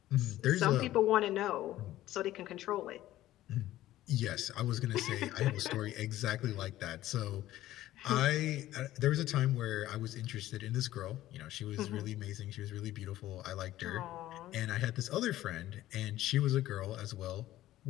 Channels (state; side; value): quieter; right; 14.6 dB